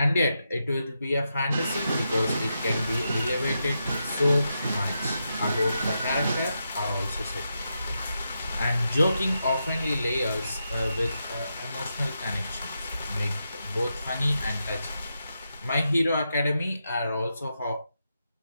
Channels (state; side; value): inverted; both; correlation -0.85